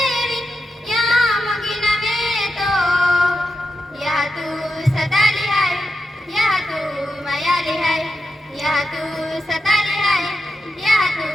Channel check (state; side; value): normal; both; correlation 0.87